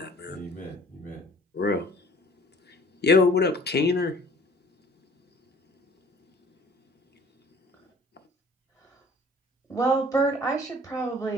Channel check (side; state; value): both; normal; correlation 0.52